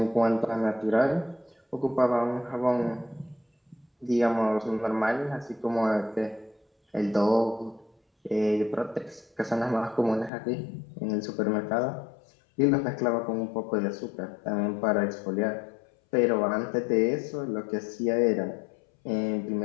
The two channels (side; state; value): right; drops out; at 10.3 s